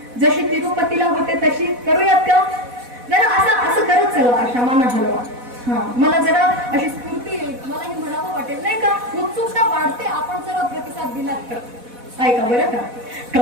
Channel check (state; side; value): late; left; 4.1 ms